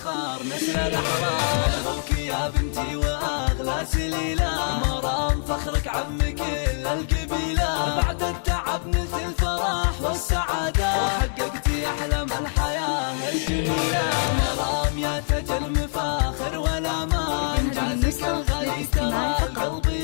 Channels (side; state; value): right; silent; digital silence